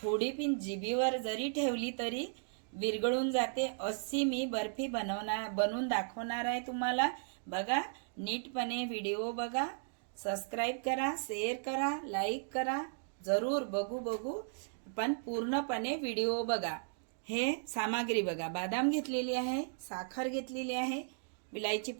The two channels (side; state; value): left; silent; digital silence